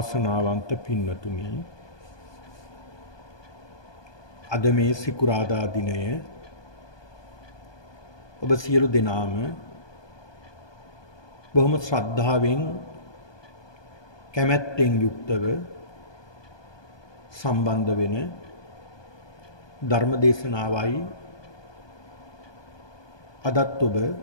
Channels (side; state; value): right; late; 1.2 ms